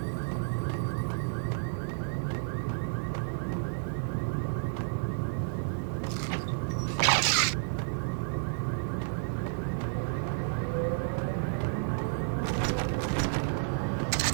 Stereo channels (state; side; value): silent; left; 57 dB below the other